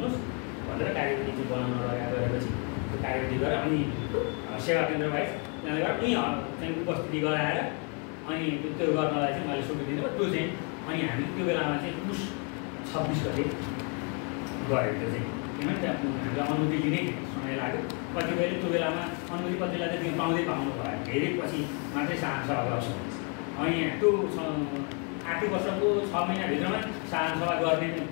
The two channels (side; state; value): right; quieter; 37.0 dB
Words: भनेर कार्यविधि चाहिँ बनाउन गरेपछि त्यो कार्यविधि गरेर अनि सेवा केन्द्र बाहेक त्यहाँबाट उनी चाहिँ उपस्थिति गराएर अनि त्यो गर्नलाई चाहिँ मैले स्वीकृति दिनु त्यो चाहिँ अनि हामी त्यो बेलामा चाहिँ पुस 26 गते गऱ्यो। त्यो चाहिँ किनभने त्यहाँ हामीलाई अनुमति लिने समय लाग्यो, कतिपयले त्यो बेलामा अनुमति कतिलाई चाहिँ त्यो पाउँदै पाउनु भयो, धेरै पछि मात्रै साधारण सभा गर्छ। अनि त्यो आर्थिक वर्षको 6 महिनाभित्रमा साधारण सभा गर्ने